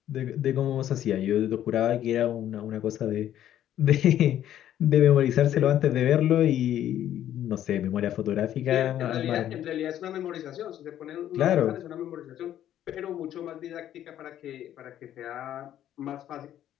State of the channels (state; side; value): quieter; right; 11.5 dB